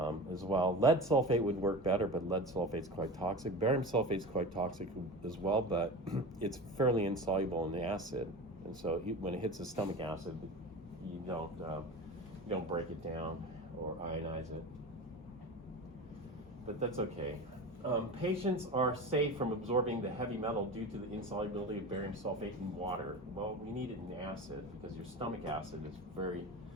as well. Lead sulfate would work better, but lead sulfate's quite toxic. Barium sulfate's quite toxic as well, but it's fairly insoluble in the acid. And so when it hits the stomach acid, you don't break it down or ionize it. But that's okay. Patients are safe from absorbing the heavy metal due to the insolubility of barium sulfate in water. Well, we need it in acid because your stomach acid is very,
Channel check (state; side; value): normal; both; correlation 0.30